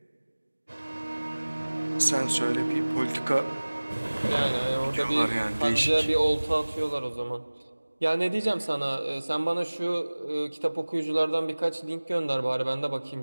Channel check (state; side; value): inverted; both; correlation -1.00